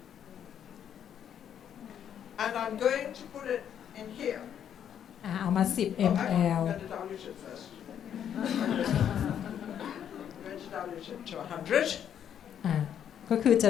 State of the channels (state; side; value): quieter; right; 9.2 dB